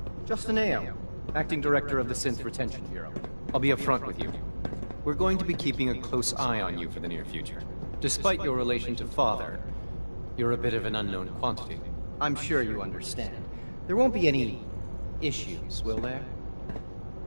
Justin Ayo, Acting Director of the Synth Retention Bureau. I'll be upfront with you. We're going to be keeping a close eye on you for the near future. Despite your relation to Father, you're a bit of an unknown quantity. I'm sure you understand. There won't be any issues, will there?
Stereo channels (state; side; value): inverted; both; correlation -1.00